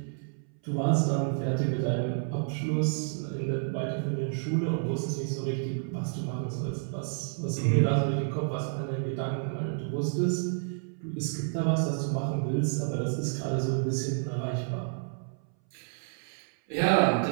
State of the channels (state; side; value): silent; left; 58 dB below the other